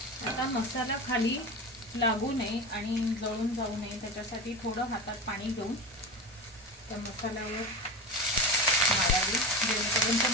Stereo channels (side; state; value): both; normal; correlation 0.25